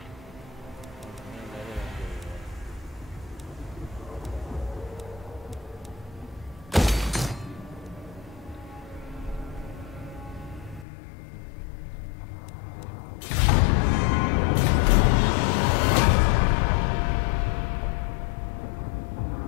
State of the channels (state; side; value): drops out; right; at 10.9 s